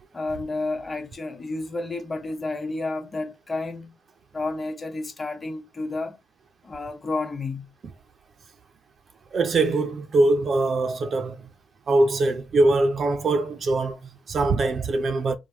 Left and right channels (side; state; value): both; normal; correlation 0.86